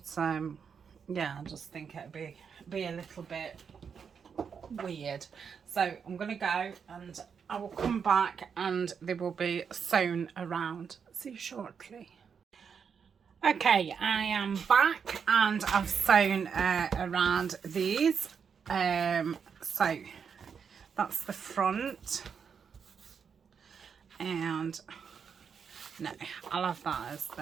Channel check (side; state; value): left; quieter; 6.6 dB